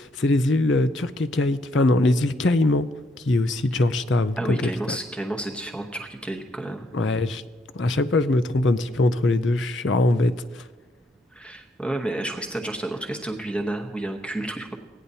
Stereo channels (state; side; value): normal; both; correlation 0.73